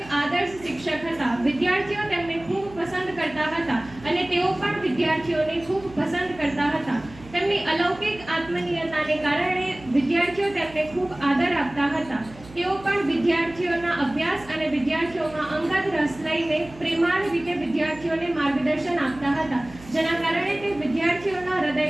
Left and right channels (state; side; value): noise; right; hum, 19 dB below the sound